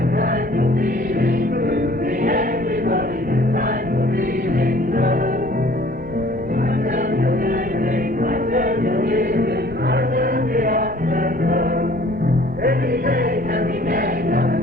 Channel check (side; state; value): both; normal; correlation 0.53